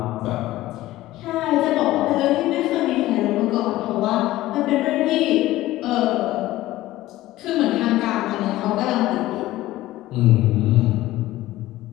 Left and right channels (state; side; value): quieter; right; 16.2 dB